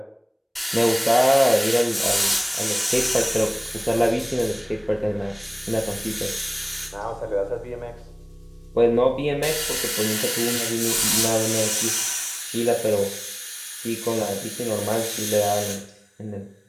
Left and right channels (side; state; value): both; identical; correlation 1.00